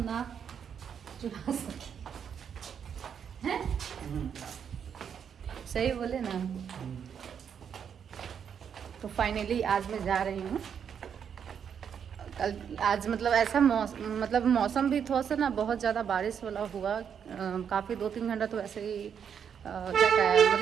ना चुरा सके, हैं? सही बोले ना। तो फाइनली आज मैं जा रही हूँ। कल आज मतलब ऐसा मौसम भी थोड़ा सा ना बहुत ज़्यादा बारिश वाला हुआ, काफ़ी 2-3 घंटा तो ऐसे ही क्या कहें,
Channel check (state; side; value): quieter; left; 7.7 dB